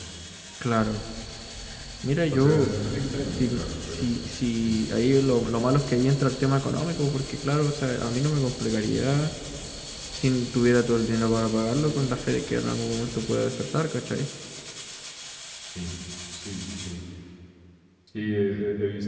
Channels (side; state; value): both; identical; correlation 1.00